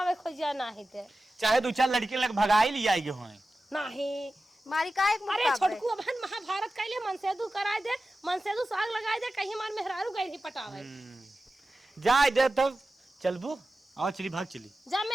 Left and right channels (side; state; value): both; normal; correlation 0.94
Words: खोज जा नहीं ते चाहे 2-4 लड़के लग भगाई लिया हो। नहीं मारी का एक अरे मुक्का पे? छोटकू बहन महाभारत कैले मनसेदू कराए दे, मनसेदू साग लगाए दे, कहीं हमार मेहरारू गई पटावे। जाए दे तब चलबू आओ चली भाग चली जा